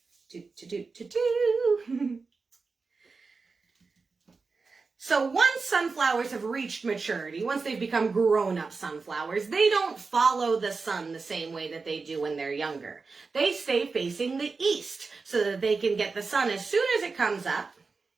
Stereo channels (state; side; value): quieter; left; 4.4 dB